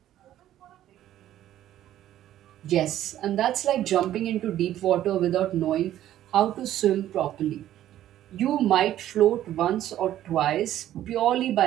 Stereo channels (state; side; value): quieter; left; 12.5 dB